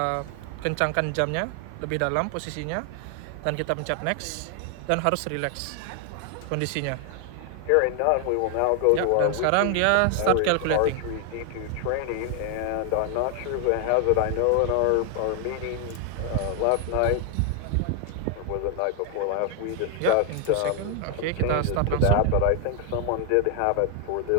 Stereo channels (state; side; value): different; both; correlation 0.00